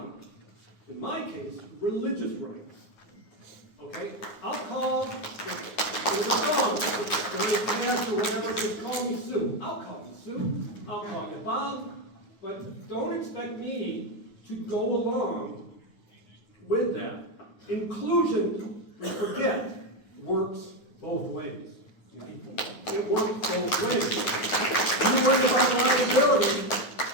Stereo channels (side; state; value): right; late; 9.5 ms